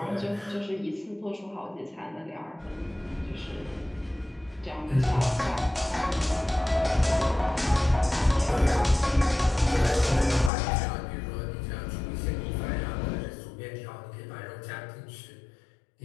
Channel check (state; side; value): drops out; right; at 10.5 s